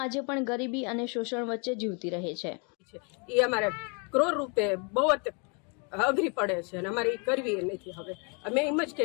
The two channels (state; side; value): quieter; right; 35.3 dB